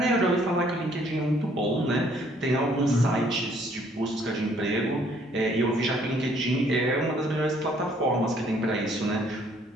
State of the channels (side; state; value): both; normal; correlation 0.63